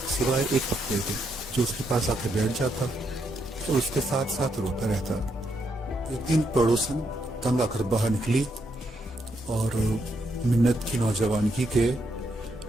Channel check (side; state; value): both; normal; correlation 0.78